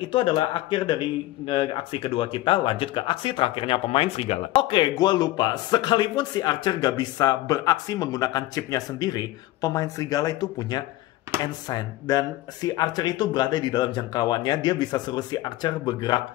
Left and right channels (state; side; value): quieter; right; 16.6 dB